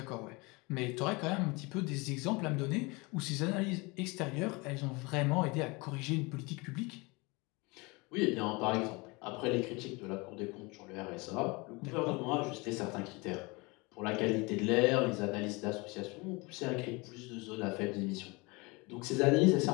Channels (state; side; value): quieter; right; 26.1 dB